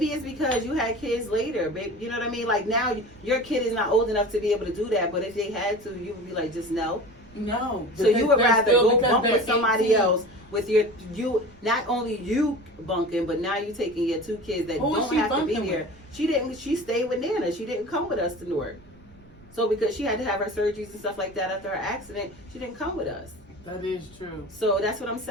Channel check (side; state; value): right; noise; rumble, 26 dB below the sound